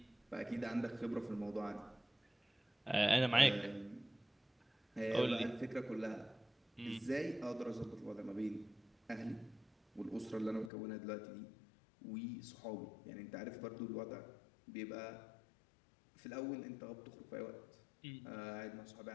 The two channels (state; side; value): drops out; right; at 10.7 s